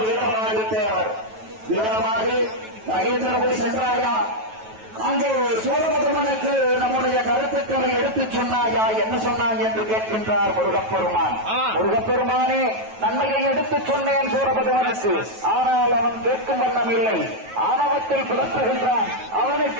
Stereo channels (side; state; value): left; late; 9.2 ms